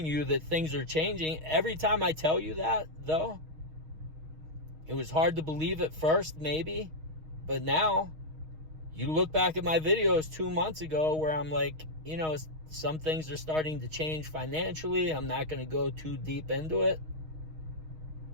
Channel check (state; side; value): late; left; 6.4 ms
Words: you that things are changing. Every time I tell you that, though, it was hard to believe at first, maybe. But now, you look back at my videos 2 months ago where I'm like, some things are starting to change financially. I'm not going to go too deep into it.